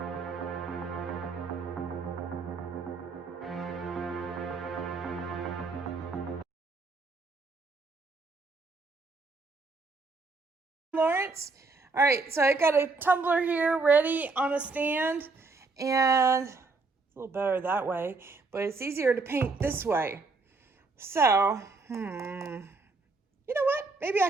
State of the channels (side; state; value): left; quieter; 3.9 dB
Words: Lawrence. All right, so I got a tumbler here ready on a stand, and it's a little better that way, but it's easier to paint this way. So, you know what? Maybe